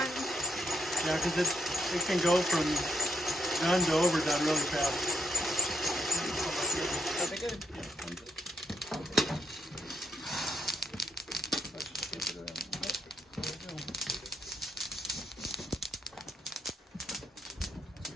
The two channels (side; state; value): both; normal; correlation 0.76